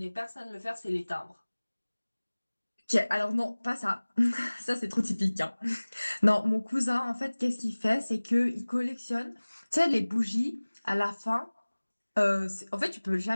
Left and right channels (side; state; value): both; inverted; correlation -1.00